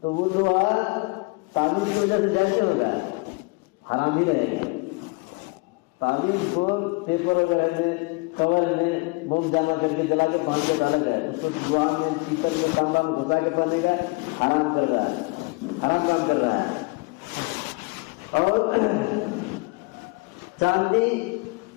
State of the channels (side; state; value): right; quieter; 28.0 dB